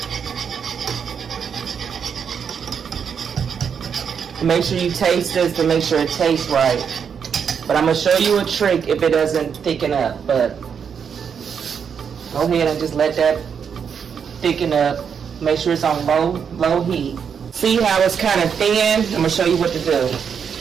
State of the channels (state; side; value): quieter; left; 7.1 dB